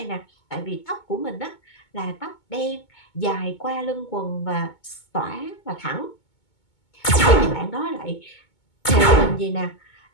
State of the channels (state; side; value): late; right; 2.2 ms